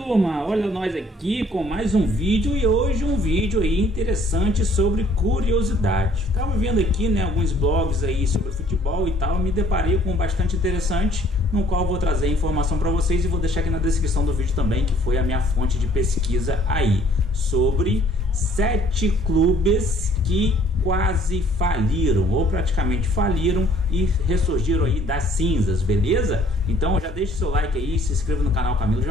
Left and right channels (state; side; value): normal; both; correlation 0.59